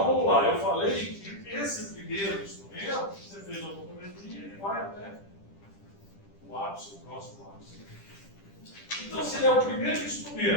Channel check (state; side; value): late; right; 10 ms